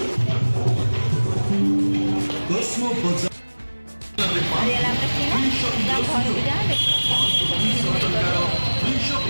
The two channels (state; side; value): inverted; both; correlation -1.00